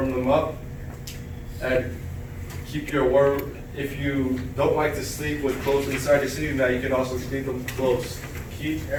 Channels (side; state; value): both; identical; correlation 1.00